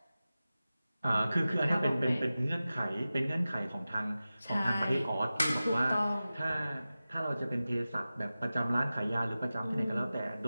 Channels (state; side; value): inverted; both; correlation -0.95